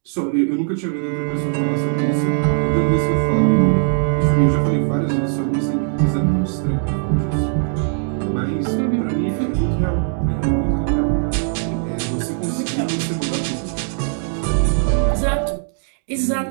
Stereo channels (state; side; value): silent; left; 66 dB below the other